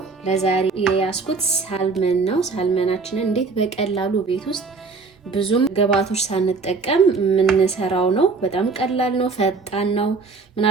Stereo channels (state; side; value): quieter; left; 4.4 dB